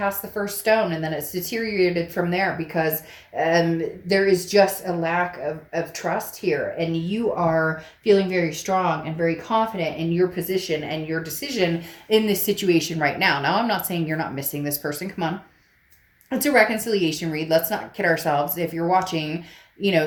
the first stone, and then it's deteriorated from there because there is just a lack of trust here. And you are feeling very strong and very confident in your position and your decision in this situation right now. Now, I'm not saying you're not missing this person. Come on. It's a reconciliation read. Let's not kid ourselves. If you're watching,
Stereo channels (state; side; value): identical; both; correlation 1.00